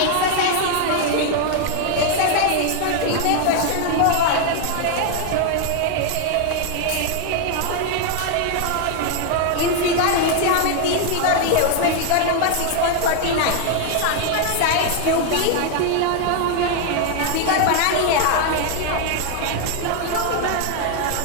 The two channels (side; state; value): both; different; correlation 0.00